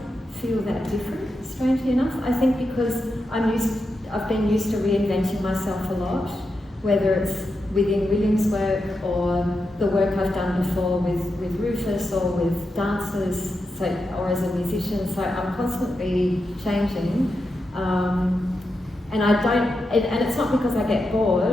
feel that different. Strangely enough, I think because I've been used to reinventing myself a lot, whether it's within William's work or the work I've done before with Rufus or with dancers, or as a musician. So I'm constantly changing, and and it's not because I get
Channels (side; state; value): both; normal; correlation 0.87